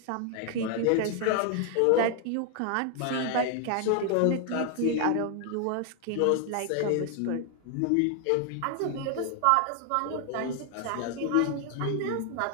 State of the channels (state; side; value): different; both; correlation 0.00